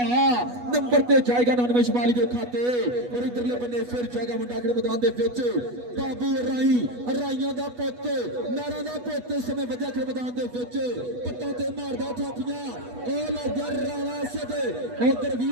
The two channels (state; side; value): late; left; 8.2 ms